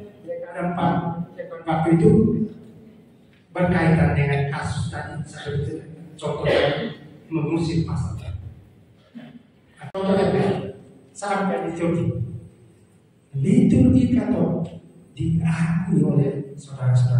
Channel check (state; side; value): identical; both; correlation 1.00